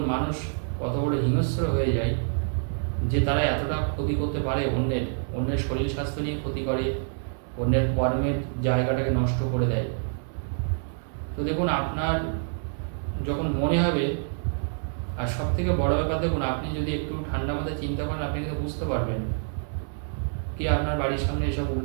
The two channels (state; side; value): silent; left; 60 dB below the other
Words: মানুষ কত বড় হিংস্র হয়ে যায় যে তারা এতটা ক্ষতি করতে পারে। অন্যের শরীর স্বাস্থ্য নিয়ে ক্ষতি করে, অন্যের কর্মের জায়গাটাকে নষ্ট করে দেয়। তো দেখুন, আপনার যখন মনে হবে, আর সব থেকে বড় ব্যাপার দেখুন, আপনি যদি একটু ঠান্ডা মাথায় চিন্তা করেন, আপনি কিন্তু বুঝতে পারবেন কি আপনার বাড়ির সামনে এসব